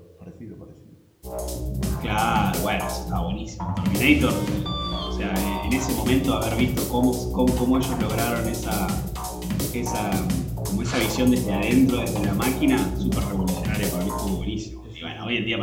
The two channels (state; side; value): identical; both; correlation 1.00